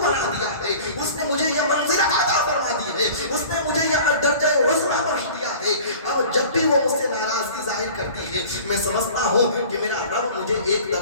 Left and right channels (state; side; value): inverted; both; correlation -0.43